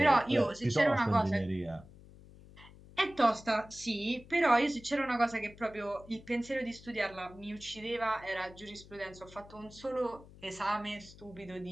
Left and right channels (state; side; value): noise; left; hum, 20 dB below the sound